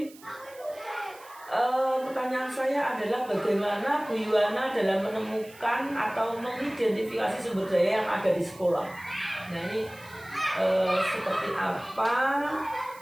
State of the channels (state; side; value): noise; right; hiss, 22 dB below the sound